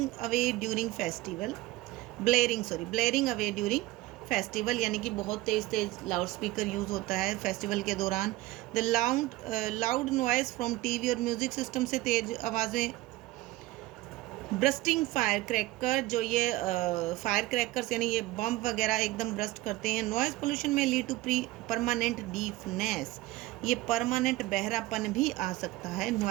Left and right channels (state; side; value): quieter; left; 18.2 dB